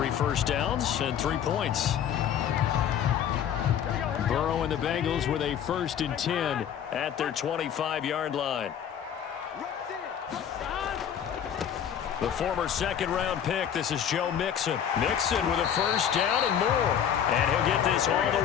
first downs and 3 points. Burrow and the Bengals with a 1st and 10 at their 25-yard line. The former 2nd-round pick, this is Joe Mixon. Mixon with a 1st down and more. And he'll get this all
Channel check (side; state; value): right; quieter; 9.0 dB